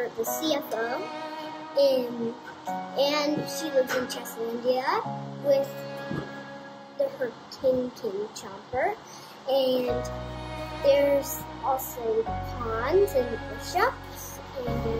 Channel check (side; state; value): both; identical; correlation 1.00